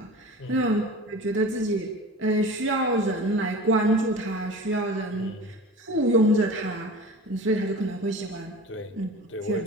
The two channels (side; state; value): both; normal; correlation 0.36